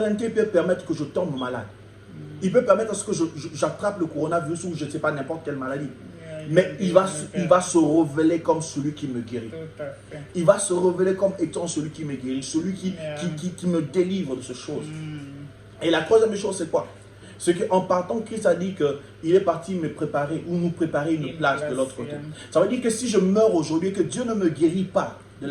il peut permettre que je tombe malade. Il peut permettre que j'attrape le coronavirus ou je ne sais pas, n'importe quelle maladie. Mais il va se révéler comme celui qui me guérit. Il va se révéler comme étant celui qui me guérit, celui qui me délivre de ces choses. Et la troisième chose, c'est quoi? C'est qu'en partant, Christ a dit qu'il est parti me préparer ou nous préparer une place de l'autre côté. Ça veut dire que si je meurs aujourd'hui, que Dieu ne me guérit pas de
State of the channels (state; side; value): identical; both; correlation 1.00